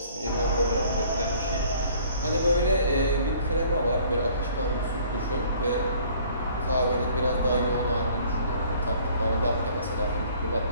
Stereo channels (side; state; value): both; inverted; correlation -0.56